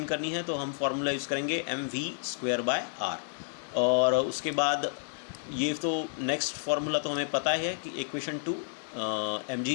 करनी है तो हम फॉर्मूला यूज़ करेंगे mv स्क्वायर बाय r। और उसके बाद ये तो नेक्स्ट फार्मूला तो हमें पता है कि equation 2 mg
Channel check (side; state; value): right; silent; 57 dB below the other